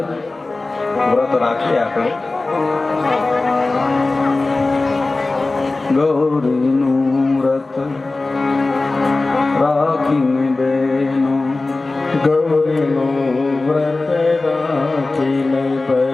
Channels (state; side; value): quieter; right; 3.3 dB